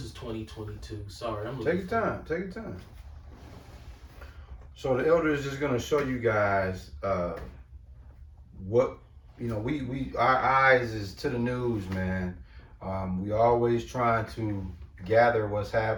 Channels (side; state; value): both; identical; correlation 1.00